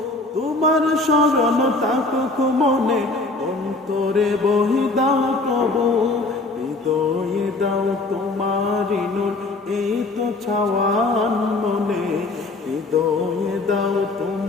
তোমার শরণ থাকুক মনে অন্তরে বই দাও প্রভু। হৃদয়ে দাও তোমারি নূর এই তো চাওয়ান মনে, হৃদয়ে দাও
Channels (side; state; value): right; quieter; 3.1 dB